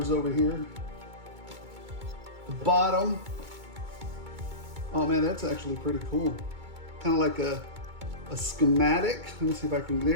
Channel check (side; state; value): left; late; 2.2 ms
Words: over here. The bottom. Oh man, that's actually pretty cool. Kind of like a schematic. Let me see if I can,